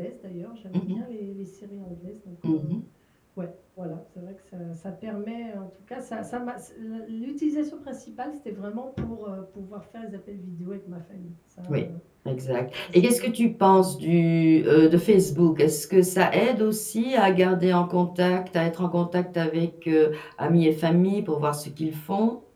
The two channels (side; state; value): both; identical; correlation 1.00